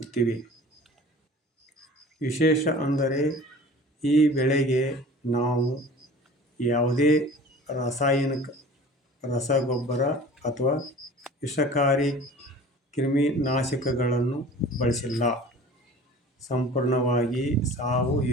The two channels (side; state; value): both; normal; correlation 0.43